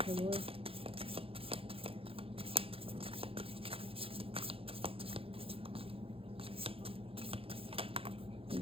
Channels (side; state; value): left; late; 0.27 ms